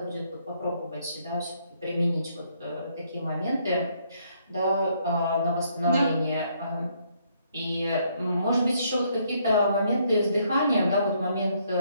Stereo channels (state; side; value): inverted; both; correlation -0.70